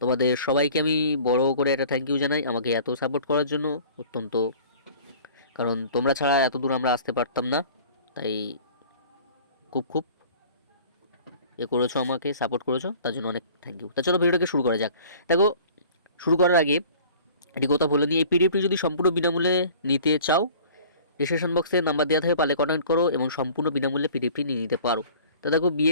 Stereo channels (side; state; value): both; inverted; correlation -0.47